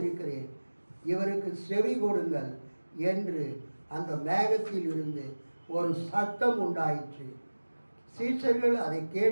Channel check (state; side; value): inverted; both; correlation -1.00